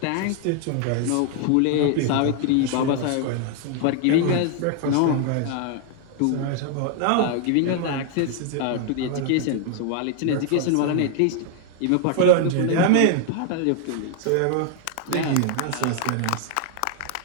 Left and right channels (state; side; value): different; both; correlation 0.00